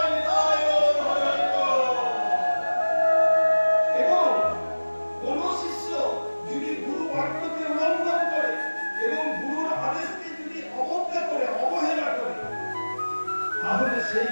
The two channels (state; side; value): inverted; both; correlation -1.00